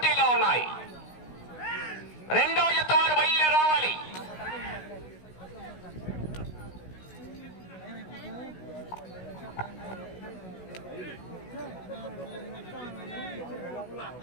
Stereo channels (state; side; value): late; right; 16 ms